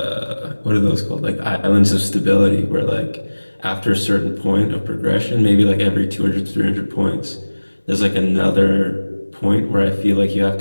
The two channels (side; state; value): both; inverted; correlation -1.00